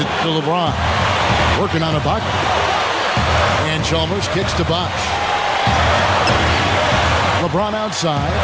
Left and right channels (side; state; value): both; identical; correlation 1.00